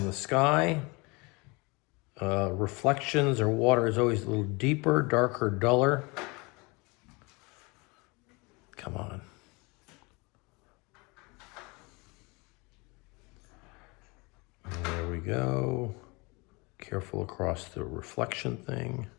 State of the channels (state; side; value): quieter; right; 27.2 dB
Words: the sky. Reflections or water is always a little deeper, darker, duller. Come on. And there we go. Careful across the reflection thing.